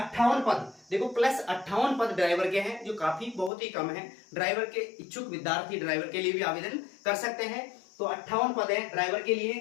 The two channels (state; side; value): drops out; right; at 3.5 s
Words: पद, देखो प्लस 58 पद ड्राइवर के हैं, जो काफी बहुत ही कम है। ड्राइवर के इच्छुक विद्यार्थी ड्राइवर के लिए भी आवेदन कर सकते हैं। तो 58 पद हैं ड्राइवर के